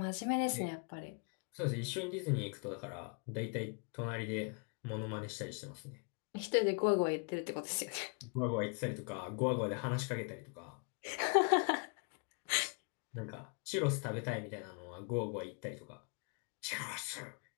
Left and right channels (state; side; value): quieter; right; 37.6 dB